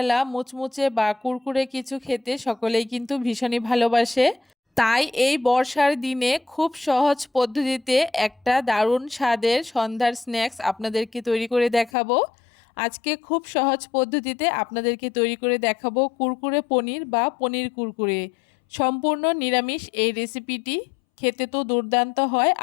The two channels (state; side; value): drops out; right; at 11.9 s